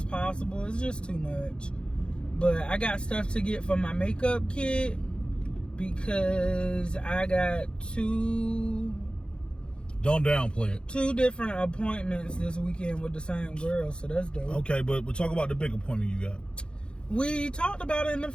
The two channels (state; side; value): late; right; 0.054 ms